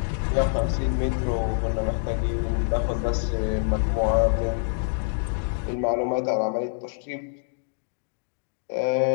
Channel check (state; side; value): silent; right; digital silence